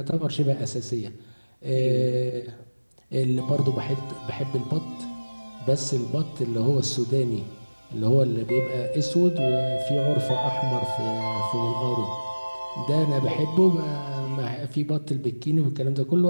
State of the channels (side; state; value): both; inverted; correlation -1.00